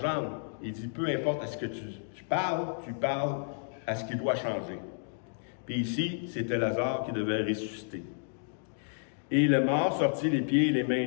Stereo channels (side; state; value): right; silent; digital silence